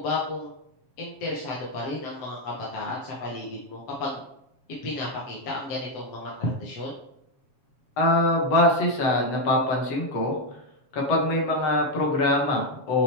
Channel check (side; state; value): right; late; 7.3 ms